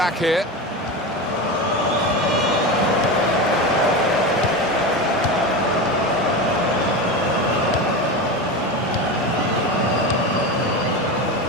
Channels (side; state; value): both; normal; correlation 0.22